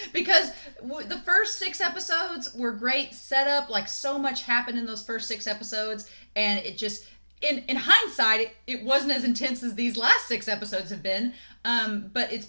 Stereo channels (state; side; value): inverted; both; correlation -1.00